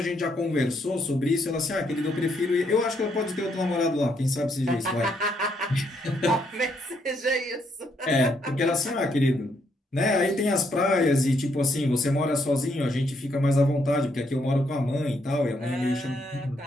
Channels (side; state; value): both; normal; correlation 0.74